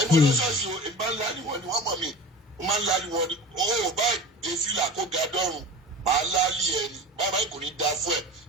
olóṣooṣù ìgbà ńlá ni wọ́n mọ̀ mí wọ́n máa ń lálẹ́ wọn ni ó bá dé fìlà kó ga dọ́rùn máa lálẹ́ ẹni bàbá kò ní da fún ẹ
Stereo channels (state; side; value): normal; both; correlation 0.34